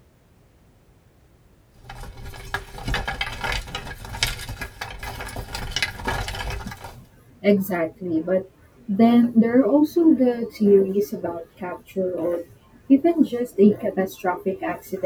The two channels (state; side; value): identical; both; correlation 1.00